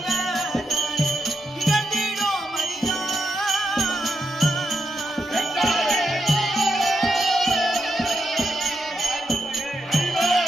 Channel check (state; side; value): normal; both; correlation 0.83